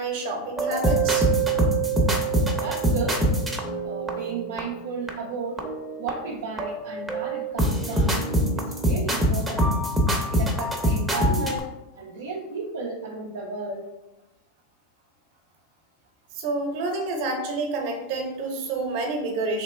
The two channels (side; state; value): both; normal; correlation 0.23